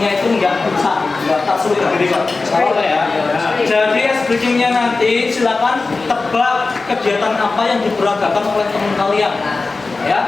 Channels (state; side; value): quieter; right; 3.8 dB